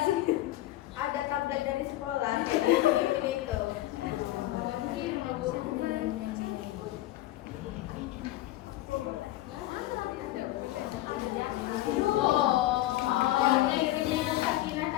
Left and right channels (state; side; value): quieter; right; 15.7 dB